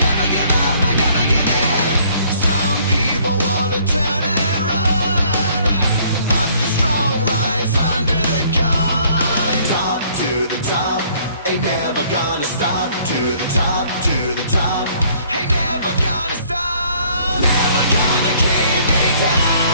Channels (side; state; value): both; inverted; correlation -0.60